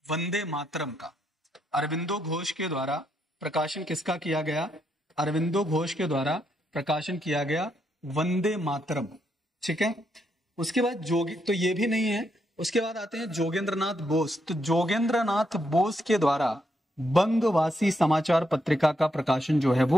वंदे मातरम का। अरविंदो घोष के द्वारा प्रकाशन किसका किया गया? अरविंदो घोष के द्वारा प्रकाशन किया गया वंदे मातरम, ठीक है। उसके बाद तो ये भी नहीं है। उसके बाद आते हैं जोगेंद्रनाथ बोस। तो जोगेंद्रनाथ बोस के द्वारा बंगवासी समाचार पत्रिका का प्रकाशन जो है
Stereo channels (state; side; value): normal; both; correlation 0.78